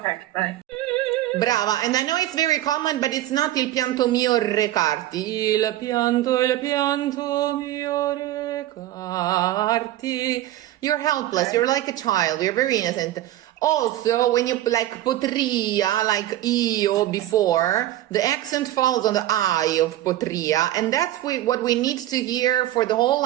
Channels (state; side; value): quieter; left; 14.2 dB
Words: right. Brava, and I know it's very common, but it's not il pianto mio recarti. Il pianto mio recarti. You're helpless, you're like a child, you're very innocent. Also, when you like potria, like io before, the accent falls on the I of potria, and that's what we need to hear for the whole